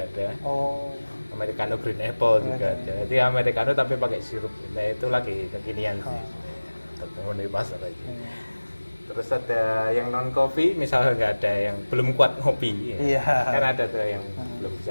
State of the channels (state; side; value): inverted; both; correlation -1.00